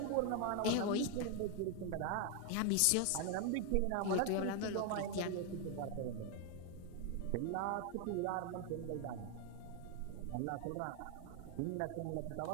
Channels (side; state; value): both; different; correlation 0.00